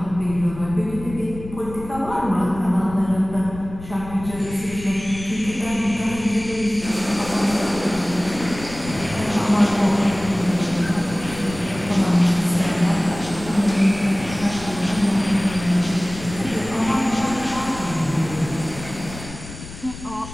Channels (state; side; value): noise; left; rumble, 13 dB below the sound